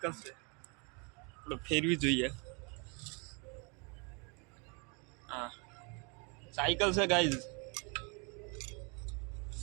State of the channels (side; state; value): left; quieter; 33.1 dB